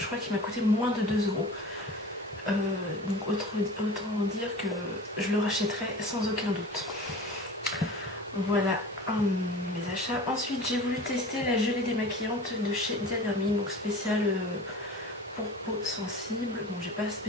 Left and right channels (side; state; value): both; normal; correlation 0.38